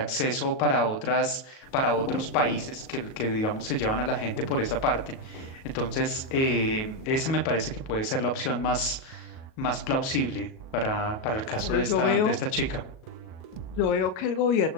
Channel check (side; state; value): right; late; 37 ms